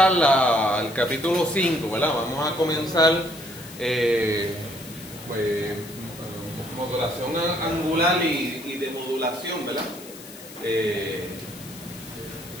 el capítulo 5, ¿verdad? Vamos a comenzar pues, modulación angular y de modulación, ¿verdad?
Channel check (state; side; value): noise; left; hiss, 17 dB below the sound